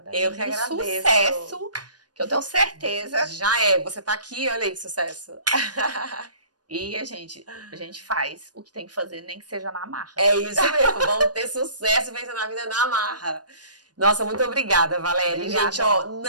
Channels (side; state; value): left; late; 0.69 ms